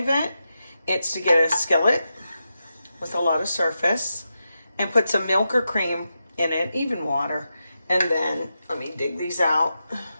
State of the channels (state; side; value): inverted; both; correlation -0.88